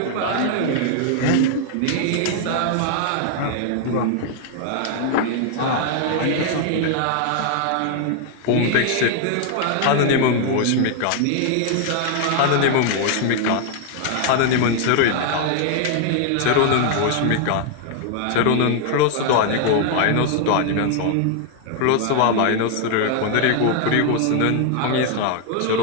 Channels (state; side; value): different; both; correlation 0.00